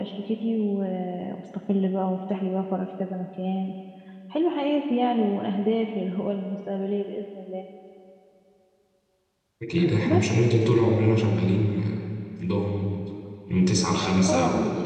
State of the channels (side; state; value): both; identical; correlation 1.00